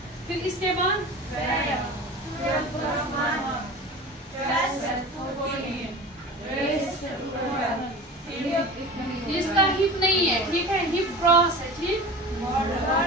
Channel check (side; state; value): both; normal; correlation 0.35